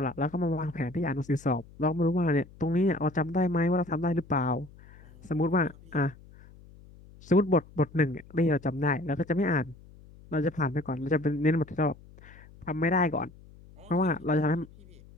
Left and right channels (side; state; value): left; noise; hum, 22 dB below the sound